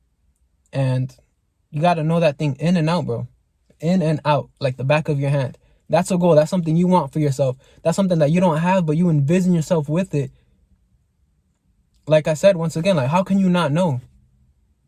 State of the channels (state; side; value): identical; both; correlation 1.00